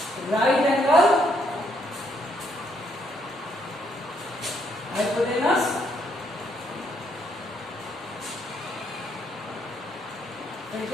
right angle hypotenuse फिर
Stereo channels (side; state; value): both; normal; correlation 0.72